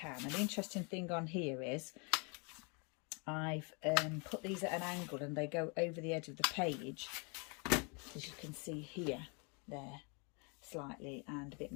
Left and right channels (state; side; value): quieter; right; 33.9 dB